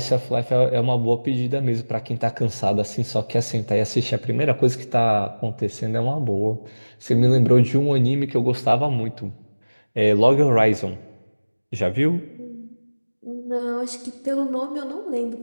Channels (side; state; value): both; inverted; correlation -1.00